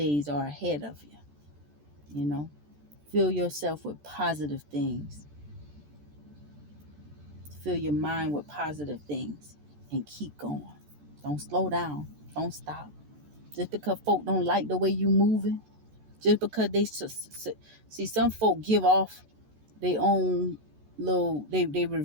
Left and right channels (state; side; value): late; left; 14 ms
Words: are ahead of you. You know, fill yourself with positive things. Fill your mind with positive things and keep going. Don't slow down. Don't stop. Just because folk don't like the way you moving, just because they see some folk give off their own little, they